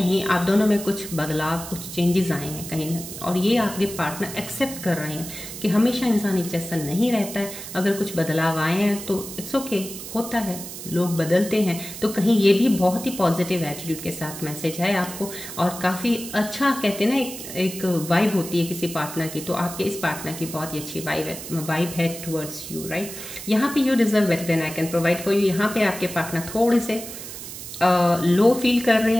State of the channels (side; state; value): right; noise; hiss, 10 dB below the sound